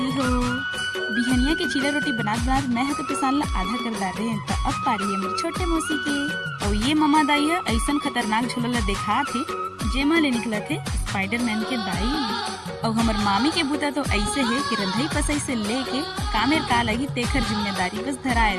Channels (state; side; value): identical; both; correlation 1.00